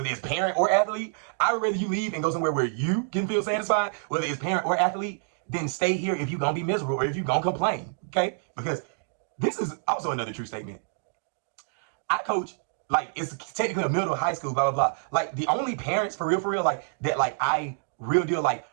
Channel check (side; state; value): left; silent; digital silence